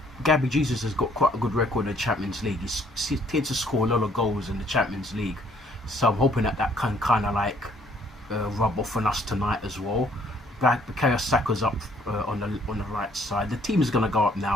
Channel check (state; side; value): normal; both; correlation 0.63